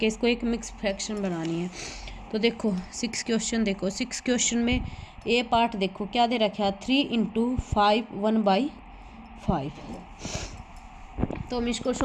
इसको एक मिक्स्ड फ्रैक्शन बनानी है। तो देखो 6 क्वेश्चन देखो। 6 क्वेश्चन में ए पार्ट देखो क्या दे रखा है 3 इंटू 5 1/5, तो हम इसको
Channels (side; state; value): both; identical; correlation 1.00